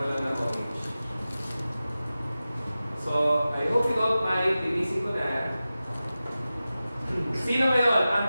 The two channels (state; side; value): inverted; both; correlation -0.95